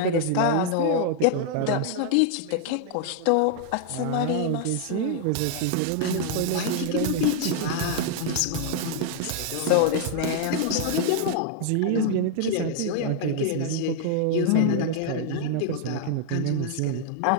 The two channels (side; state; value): both; different; correlation 0.00